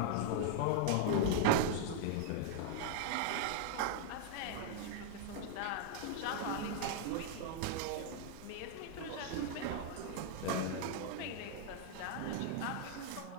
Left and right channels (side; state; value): both; different; correlation 0.00